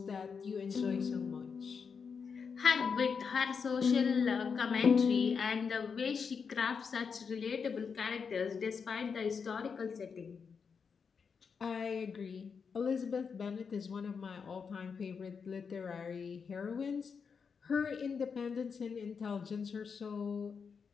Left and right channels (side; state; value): right; quieter; 5.9 dB